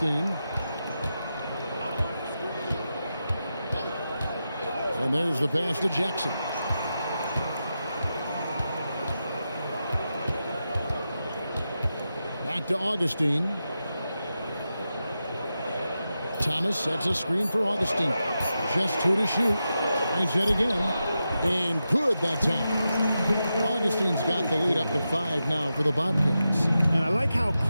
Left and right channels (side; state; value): both; inverted; correlation -0.90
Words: And there's the pass to Jackson. Back to Augustine. Thomas sets a screen for Augustine. Just 2 to shoot. Tries it again. And good that time. Augustine's got the lead up to 5 now for the Bobcats. And I like how